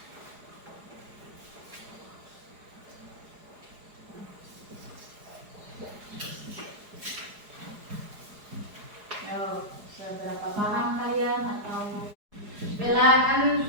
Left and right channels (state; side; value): late; left; 4.8 ms